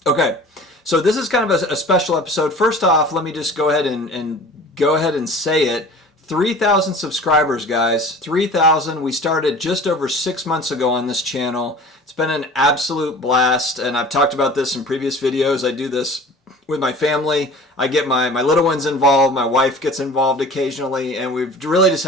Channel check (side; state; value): both; normal; correlation 0.42